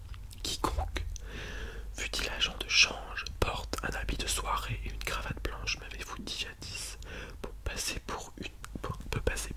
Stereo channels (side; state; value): both; identical; correlation 1.00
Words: Quiconque, fût-il agent de change, porte un habit de soirée et une cravate blanche, m'avez-vous dit jadis, peut passer